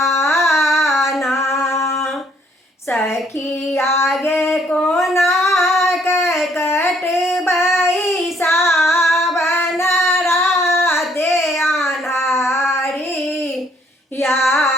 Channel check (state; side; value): normal; both; correlation 0.65